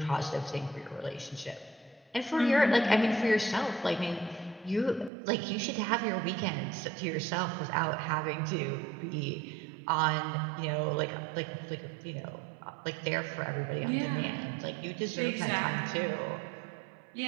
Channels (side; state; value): left; drops out; at 5.1 s